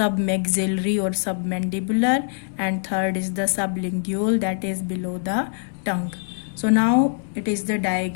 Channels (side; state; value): right; silent; 63 dB below the other